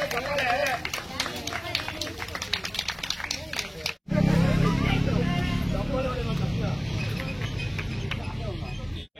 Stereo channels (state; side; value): identical; both; correlation 1.00